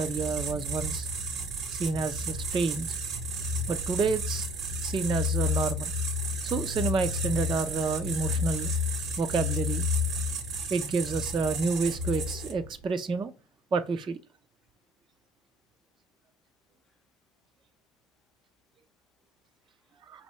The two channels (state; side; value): normal; both; correlation 0.56